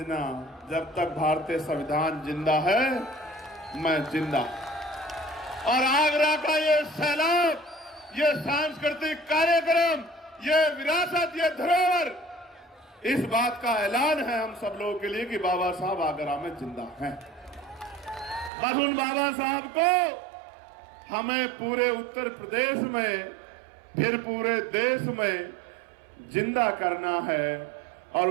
जब तक भारतीय संविधान जिंदा है मैं जिंदा। और आगरा का ये सैलाब, ये सांस्कृतिक कार्यक्रम, ये विरासत, ये धरोहर, इस बात का ऐलान है हम सब लोगों के लिए कि बाबा साहब आगरा में जिंदा हैं। बस उन बाबा साहब को हमें पूरे उत्तर प्रदेश में, फिर पूरे देश में जिंदा करना है और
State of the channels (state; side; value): drops out; left; at 18.5 s